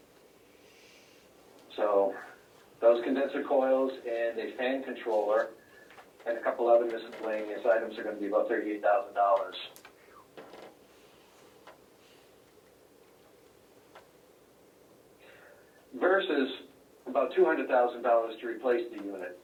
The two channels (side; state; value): both; identical; correlation 1.00